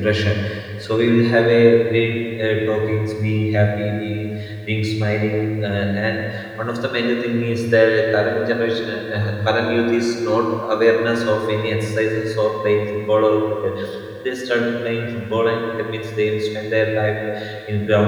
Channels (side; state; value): both; identical; correlation 1.00